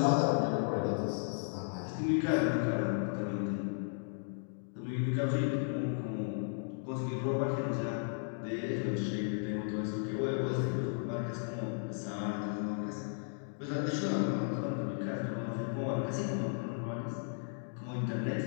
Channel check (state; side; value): silent; right; digital silence